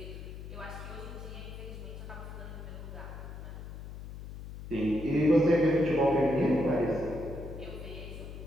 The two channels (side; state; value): left; noise; hum, 11 dB below the sound